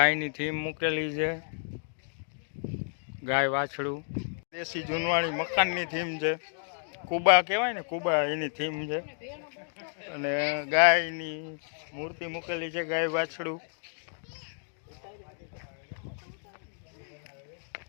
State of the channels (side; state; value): right; silent; 57 dB below the other